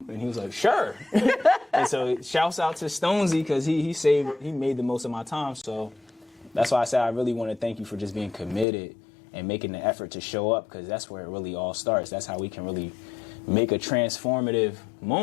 And he was like, sure. And so shouts out to Stonesy, because he made the most of my time. So that's why I said I really want to thank you for just being committed and making the effort to show up, because that's where it really all starts. That's how we can really make a transformative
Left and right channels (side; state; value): right; drops out; at 8.7 s